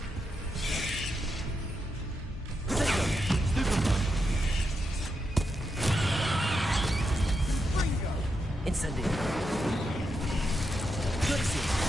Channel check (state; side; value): normal; both; correlation 0.85